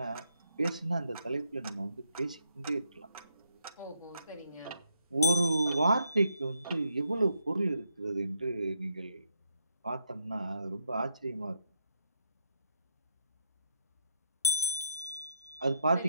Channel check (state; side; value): inverted; both; correlation -0.75